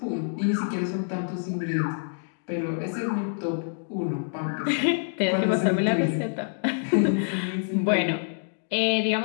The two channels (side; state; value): right; silent; digital silence